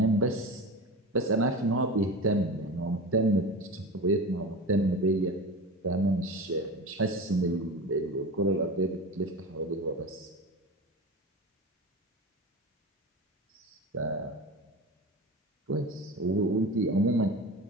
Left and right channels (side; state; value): both; normal; correlation 0.29